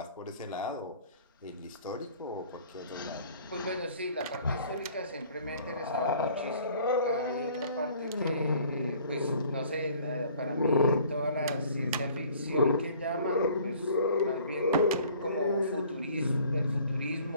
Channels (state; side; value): inverted; both; correlation -0.54